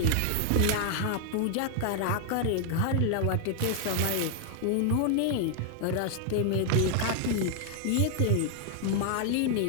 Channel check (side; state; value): both; different; correlation 0.00